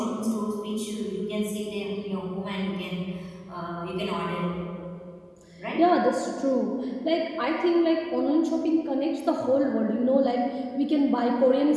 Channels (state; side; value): identical; both; correlation 1.00